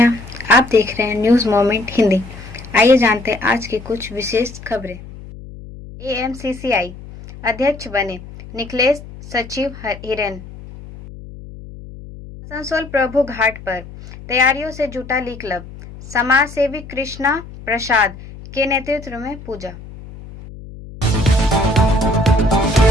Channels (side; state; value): left; noise; hum, 15 dB below the sound